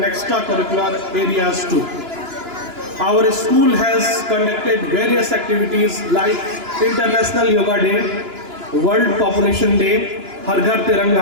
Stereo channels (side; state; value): left; late; 2.9 ms